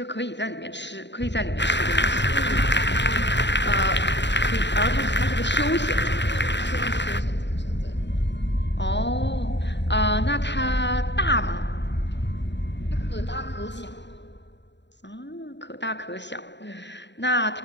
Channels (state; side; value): late; right; 0.52 ms